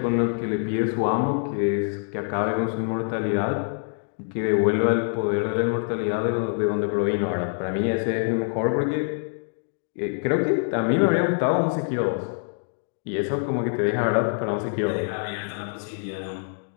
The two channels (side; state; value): right; silent; 62 dB below the other